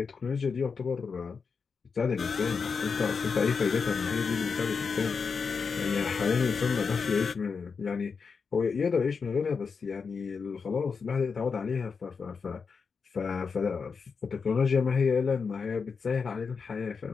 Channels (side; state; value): right; quieter; 5.4 dB